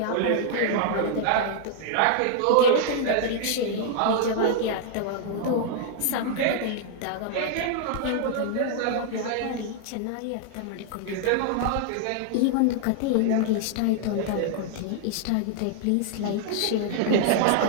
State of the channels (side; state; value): both; different; correlation -0.01